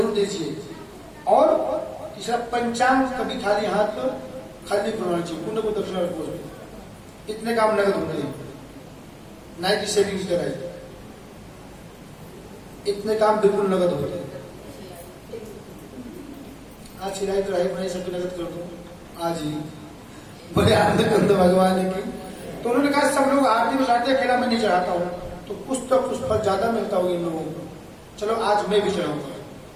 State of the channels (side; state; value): both; identical; correlation 1.00